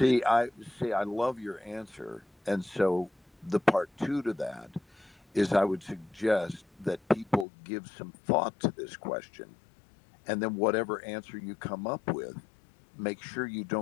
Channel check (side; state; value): right; drops out; at 7.5 s